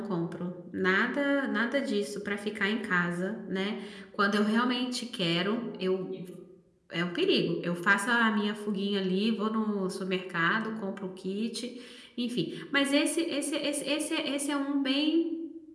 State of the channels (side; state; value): both; identical; correlation 1.00